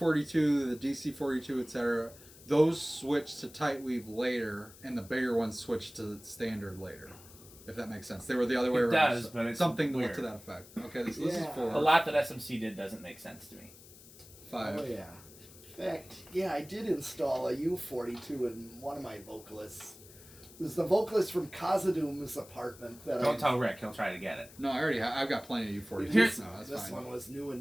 the DC42, etc. Those switched to tight weave later, and the bigger ones switched to standard later. If that makes sense, they were the other way It around. does, but it's something weird. to that effect. Okay, this is Yeah. 4. a lot that SMC did doesn't make sense to me. 5. Oh yeah. In fact, yeah, I did install a U42 in one of my vocalists. It was the vocalist from Kazadoom's apartment that Don't tell Rick; he'll try to get it. No, I already I've got plenty of U42s. Here's- No, that's This fine. one was new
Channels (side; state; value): left; noise; hiss, 20 dB below the sound